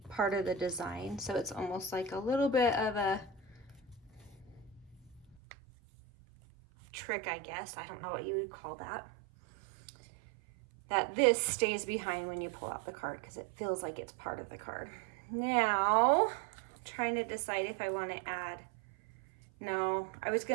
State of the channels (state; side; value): drops out; left; at 5.4 s